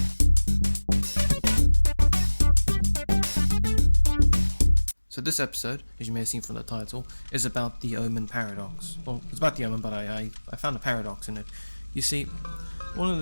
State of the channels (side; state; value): both; inverted; correlation -1.00